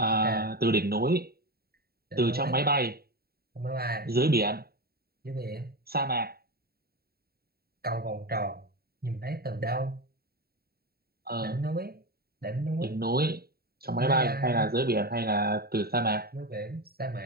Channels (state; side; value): late; left; 0.45 ms